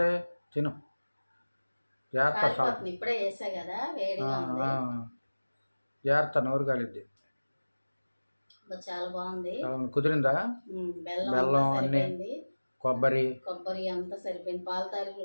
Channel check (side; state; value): both; inverted; correlation -1.00